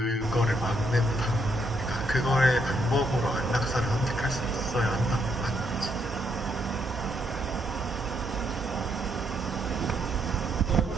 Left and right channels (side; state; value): both; normal; correlation 0.75